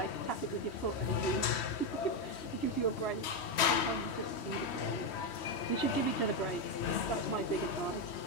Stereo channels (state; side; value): late; right; 3.1 ms